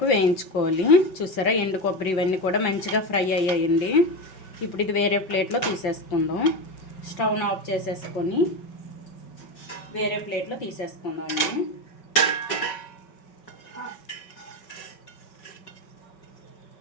వేయించుకోవాలి. చూసారా, ఎండు కొబ్బరి ఇవన్నీ కూడా మంచిగా ఫ్రై అయ్యాయండి. ఇప్పుడు ఇది వేరే ప్లేట్లో తీసేసుకుందాం. స్టవ్ను ఆఫ్ చేసేసుకొని వేరే ప్లేట్లో తీసేసుకుందాం అండి.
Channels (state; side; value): late; right; 5.3 ms